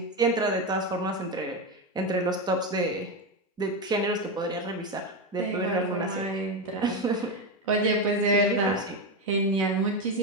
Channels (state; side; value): normal; both; correlation 0.13